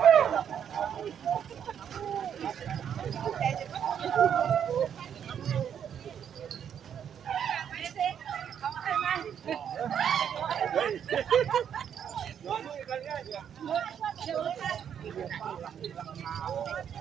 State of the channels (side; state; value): left; quieter; 8.6 dB